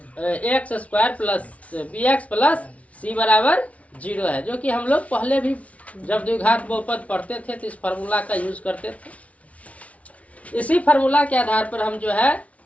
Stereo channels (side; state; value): right; late; 0.066 ms